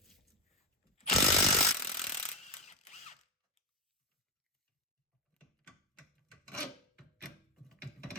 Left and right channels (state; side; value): normal; both; correlation 0.13